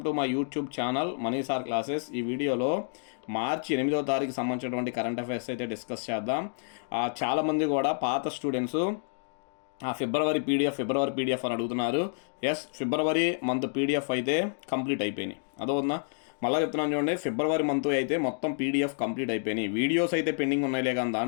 to my YouTube channel money sir classes. ఈ వీడియోలో మార్చి 8వ తారీఖు సంబంధించినటువంటి కరెంట్ అఫైర్స్ అయితే డిస్కస్ చేద్దాం. చాలామంది కూడా పాత స్టూడెంట్స్ ఫిబ్రవరి పీడిఎఫ్ అని అడుగుతున్నారు. ఎస్, ఫిబ్రవరి మంత్ పీడిఎఫ్ అయితే కంప్లీట్ అయిపోయినాయి. అదోనా మళ్ళీ చెప్తున్నాను చూడండి, ఫిబ్రవరి మంత్ అయితే మొత్తం పీడిఎఫ్ కంప్లీట్ అయిపోయినాయి. వీడియోస్ అయితే పెండింగ్ ఉన్నాయిలే, కానీ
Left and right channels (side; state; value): right; silent; digital silence